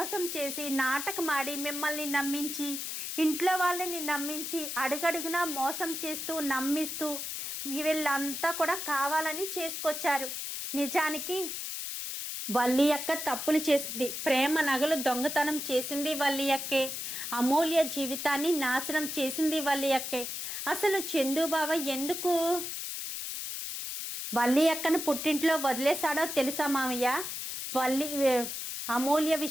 చేసి నాటకమాడి మిమ్మల్ని నమ్మించి, ఇంట్లో వాళ్ళని నమ్మించి, అడుగడుగునా మోసం చేస్తూ నమ్మిస్తూ వీళ్ళంతా కూడా కావాలని చేసుకొచ్చారు. నిజానికి వల్లి అక్క తప్పులు చేసింది. ప్రేమ నగలు దొంగతనం చేసింది వల్లి అక్కే. అమూల్య జీవితాన్ని నాశనం చేసింది వల్లి అక్కే. అసలు చందుబావ ఎందుకు వల్లి అక్కను పుట్టింట్లో వదిలేశాడో తెలుసా మామయ్య? అమూల్య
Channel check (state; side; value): noise; left; hiss, 5 dB below the sound